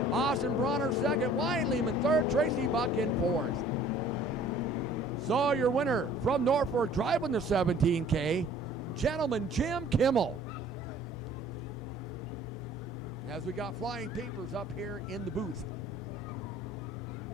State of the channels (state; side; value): normal; both; correlation 0.53